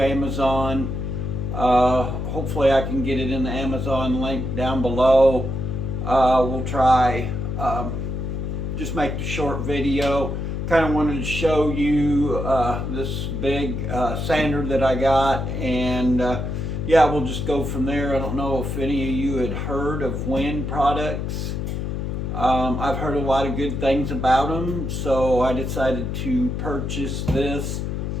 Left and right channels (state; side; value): noise; left; hum, 3 dB below the sound